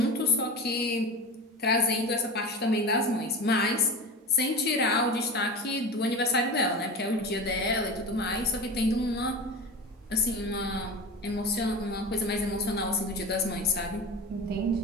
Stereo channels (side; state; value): both; normal; correlation 0.29